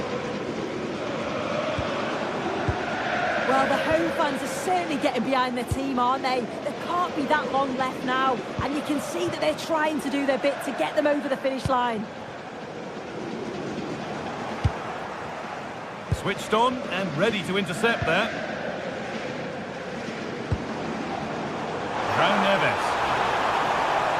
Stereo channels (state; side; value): identical; both; correlation 1.00